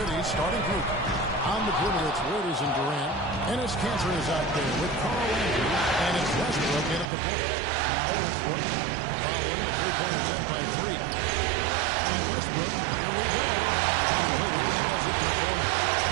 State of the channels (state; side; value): drops out; left; at 7.1 s